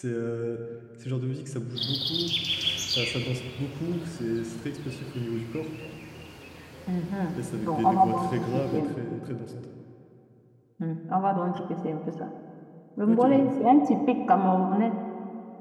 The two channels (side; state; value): both; identical; correlation 1.00